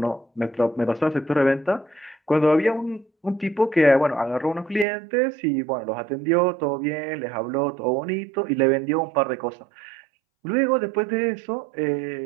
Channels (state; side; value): drops out; left; at 4.9 s